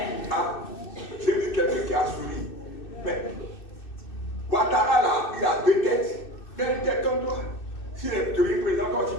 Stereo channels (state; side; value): late; right; 2.6 ms